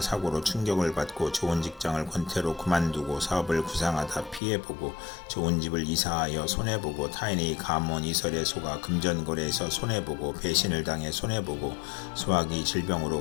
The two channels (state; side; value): drops out; right; at 4.4 s